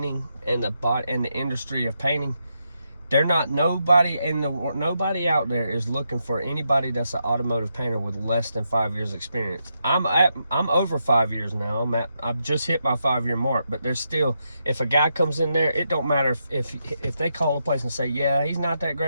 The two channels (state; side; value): inverted; both; correlation -0.82